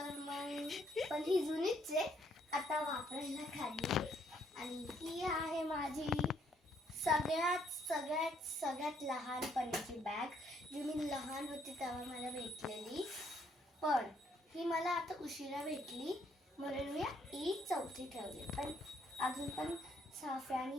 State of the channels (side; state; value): both; normal; correlation 0.69